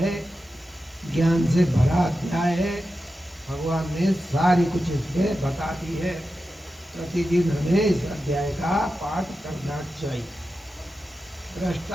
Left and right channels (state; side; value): noise; right; hiss, 29 dB below the sound